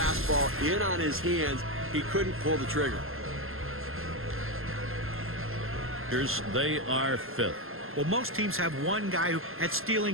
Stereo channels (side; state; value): left; late; 0.61 ms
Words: in on his hands. He couldn't pull the trigger. They are 5th. Well, most teams have one guy at